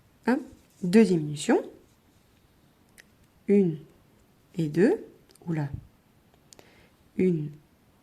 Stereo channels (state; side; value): identical; both; correlation 1.00